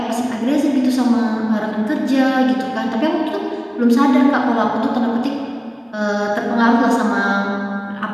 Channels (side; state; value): both; identical; correlation 1.00